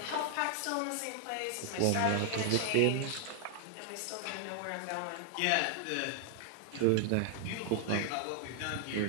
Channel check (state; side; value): different; both; correlation 0.00